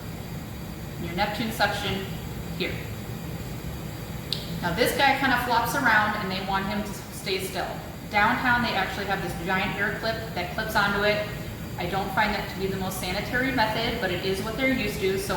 and your Neptune suction here. Now this guy kind of flops around and they want him to stay still. Downtown they actually have this giant air clip that clips onto it. I don't find that to be the most sanitary method, but it is what they're used to, so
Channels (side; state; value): both; identical; correlation 1.00